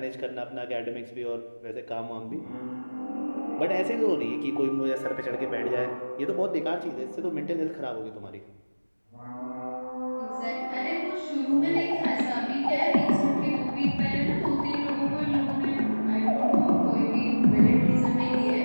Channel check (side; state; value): both; inverted; correlation -1.00